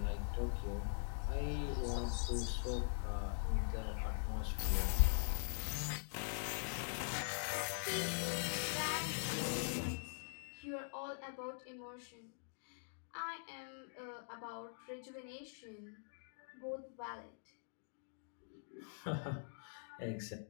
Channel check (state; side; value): silent; right; digital silence